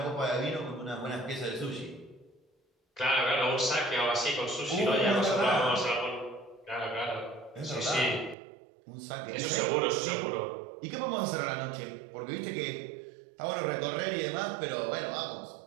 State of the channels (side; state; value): left; drops out; at 8.3 s